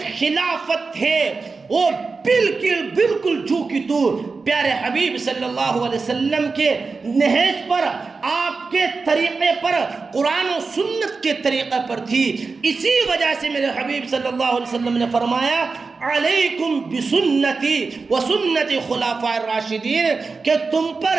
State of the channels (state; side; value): quieter; left; 4.4 dB